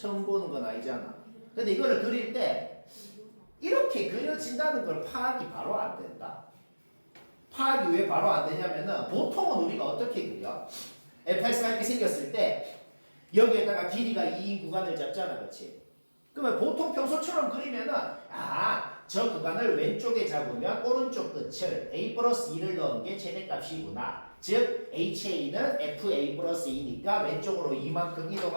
보는 건 아니잖아. 근데 이거를 그릴 때 이렇게 그려진다는 걸 파악이 바로 안 된다. 파악이 왜 바로 안 되냐면은 보통은 우리가 어떻게 그려? fx가 이렇게 생겼을 때 여기에다가 길이가 2인 구간을 잡잖아. 그렇지? 그러면 보통 평소처럼 그리면은 저 구간을 왼쪽에 잡으면 오른쪽 끝을 a 플러스 2를 넣은 게 최대값이구나. 즉 ha는 fa 플러스 2니까 왼쪽으로 이만큼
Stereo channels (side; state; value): both; inverted; correlation -1.00